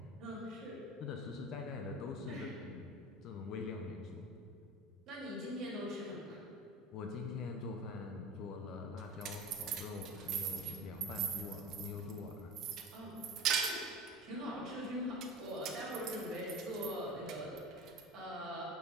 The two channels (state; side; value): normal; both; correlation 0.33